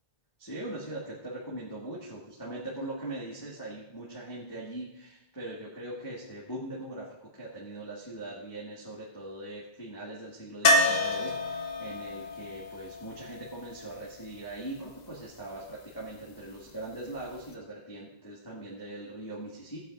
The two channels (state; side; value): late; right; 2.0 ms